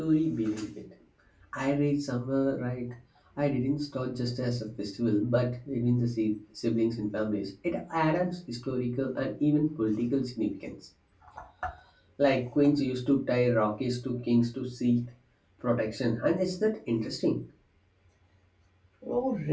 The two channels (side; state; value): both; identical; correlation 1.00